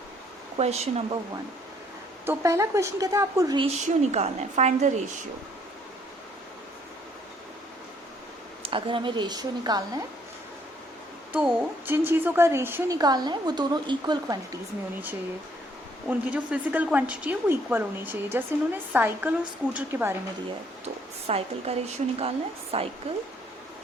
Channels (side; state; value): both; normal; correlation 0.65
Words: question number 1। तो पहला question कहता है आपको रेशियो निकालना है, फाइंड द रेशियो। अगर हमें रेशियो निकालना है तो जिन चीज़ों का रेशियो निकालना है वो दोनों इक्वल क्वांटिटीज़ में होनी चाहिए। उनकी जो फिजिकल क्वांटिटी है वो इक्वल होनी चाहिए। जैसे इन्होंने साइकिल और स्कूटर के बारे में दिया है, तो साइकिल का रेशियो निकालना है, साइकिल